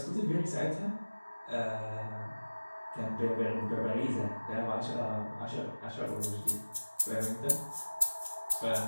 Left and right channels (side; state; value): both; inverted; correlation -1.00